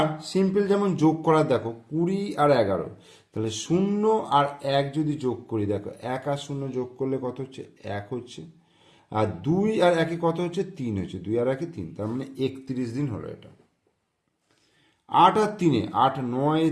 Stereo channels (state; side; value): identical; both; correlation 1.00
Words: সিম্পল যেমন যোগ করা, দেখো 20 আর 11, তাহলে 0 আর 1 যদি যোগ করি, দেখো 1 আর 0 যোগ করলে কত হচ্ছে, 1 হচ্ছে। আর 2 আর 1 কত হচ্ছে, 3 হচ্ছে। 2 আর 1 3, তার মানে 31 দিন হলো এটা। 8 আর 3, 8 9